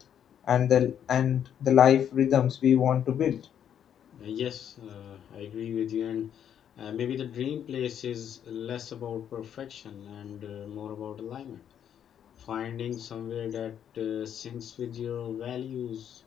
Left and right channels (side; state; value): right; quieter; 9.2 dB